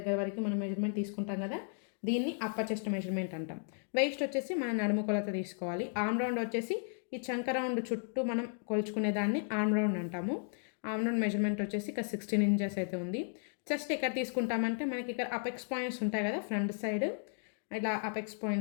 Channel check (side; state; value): right; silent; 55 dB below the other